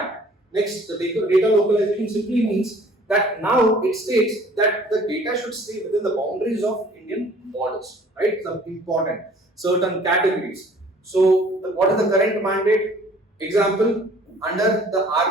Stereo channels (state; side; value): normal; both; correlation 0.53